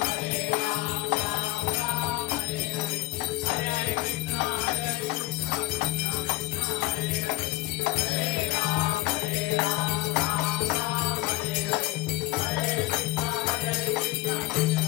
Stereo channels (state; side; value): quieter; right; 19.3 dB